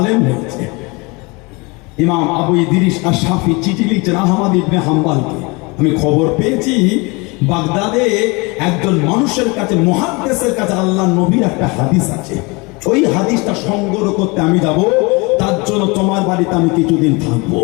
হয়েছে। ইমাম আবু ইদ্রিস আর শাফি চিঠি লিখছেন আহমদ ইবনে হাম্বলকে, আমি খবর পেয়েছি বাগদাদে একজন মানুষের কাছে, মুহাদ্দিসের কাছে আল্লাহ নবীর একটা হাদিস আছে, ওই হাদিসটা সংগ্রহ করতে আমি যাব, তার জন্য তোমার বাড়িতে আমি কিছুদিন থাকবো।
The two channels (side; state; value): right; quieter; 27.3 dB